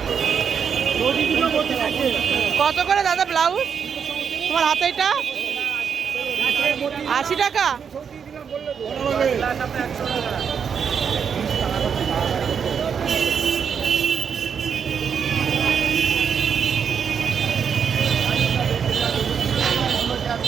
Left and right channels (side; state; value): left; quieter; 6.9 dB